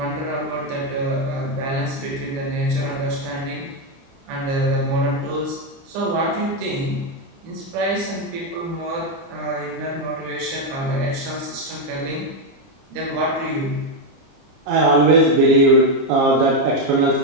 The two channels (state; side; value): late; left; 30 ms